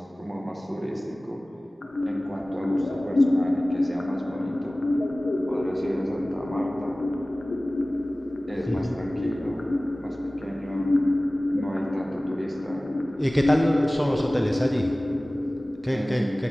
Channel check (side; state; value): both; normal; correlation 0.98